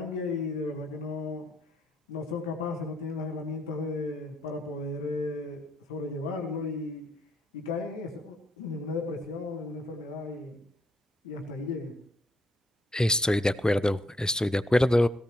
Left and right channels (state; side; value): normal; both; correlation 0.73